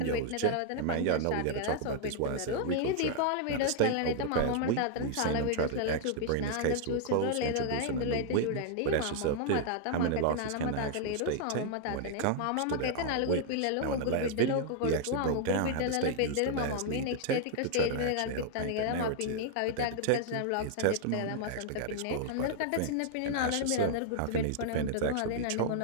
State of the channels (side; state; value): both; different; correlation -0.01